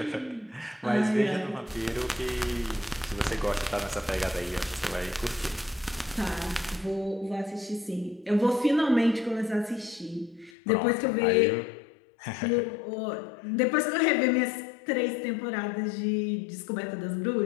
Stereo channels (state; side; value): drops out; right; at 10.5 s